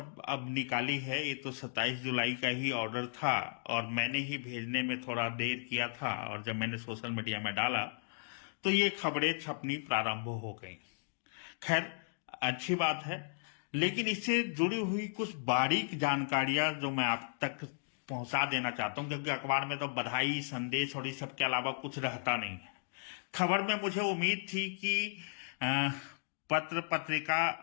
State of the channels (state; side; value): silent; right; digital silence